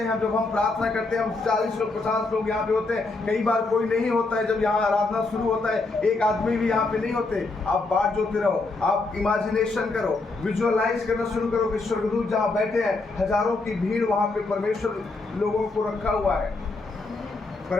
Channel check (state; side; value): quieter; right; 3.4 dB